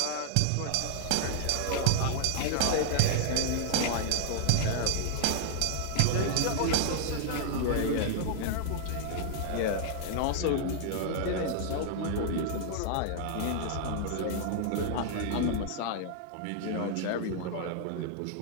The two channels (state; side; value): different; both; correlation -0.01